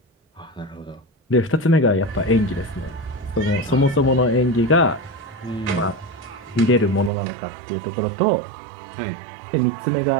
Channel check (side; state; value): left; drops out; at 7.1 s